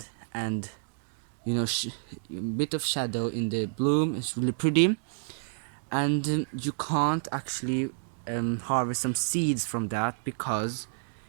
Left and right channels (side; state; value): left; silent; digital silence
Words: and you know, bit of shadow in the bloom. It's really pretty. And you can't actually harvest some seeds from that, because